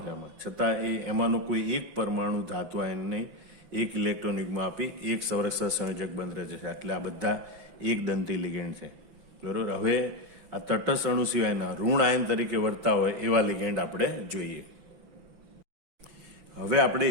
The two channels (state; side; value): late; left; 5.8 ms